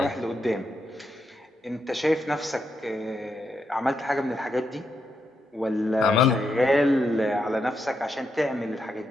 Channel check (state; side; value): normal; both; correlation 0.82